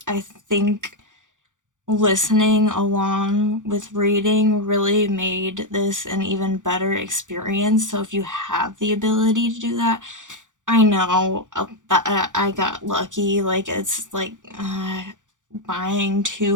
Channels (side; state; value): left; late; 0.87 ms